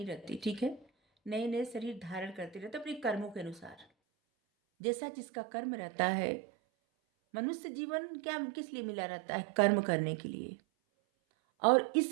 रहती, ठीक है। नए नए शरीर धारण करती रहती है अपने कर्मों के अनुसार, जैसा जिसका कर्म रहता है। मनुष्य जीवन क्या किस लिए मिला रहता है? कर्म करने के लिए। और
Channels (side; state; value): left; drops out; at 3.9 s